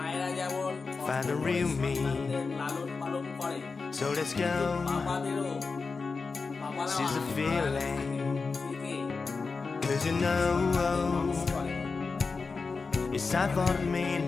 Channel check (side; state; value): right; quieter; 4.5 dB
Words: যেমন সন্তানদের লালন পালন করে, বাবাদেরও She's a feeling, 'cause you know it's time for the